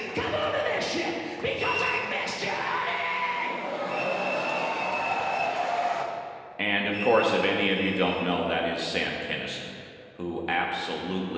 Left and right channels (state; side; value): identical; both; correlation 1.00